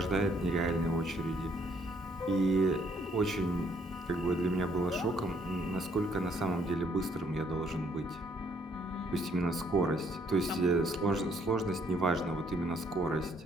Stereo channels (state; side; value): normal; both; correlation 0.67